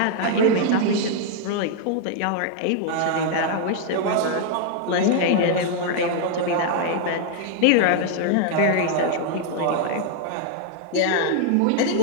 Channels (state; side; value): different; both; correlation 0.00